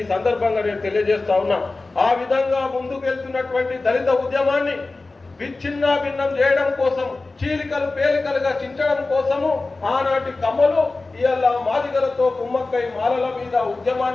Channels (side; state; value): right; quieter; 3.4 dB